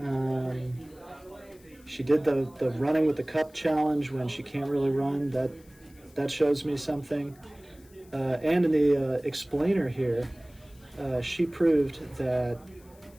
She did the running with the cup challenge when she can't really run. That shows me something. And in the explainer here, she proved that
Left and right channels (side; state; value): left; noise; hiss, 28 dB below the sound